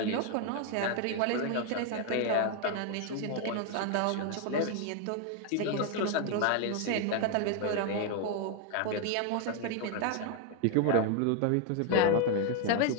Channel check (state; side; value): different; both; correlation 0.01